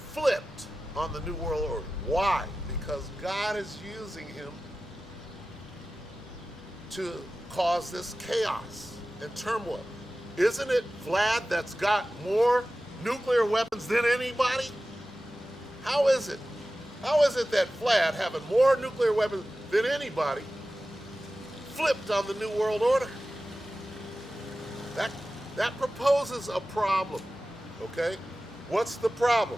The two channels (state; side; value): normal; both; correlation 0.95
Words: on the New World Order. Why? Because God is using him to cause this chaos and turmoil. Isn't it Vlad that's got more nuclear weapons than anybody? How is it? How is it that Vlad, having more nuclear weapons than anybody, flipped on the New World Order? That proposes a problem, okay? What's the